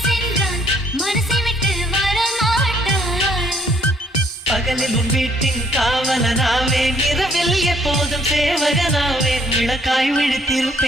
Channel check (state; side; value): normal; both; correlation 0.65